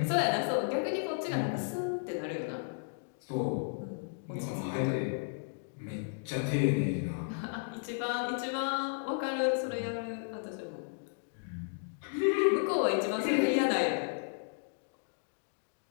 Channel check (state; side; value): silent; right; digital silence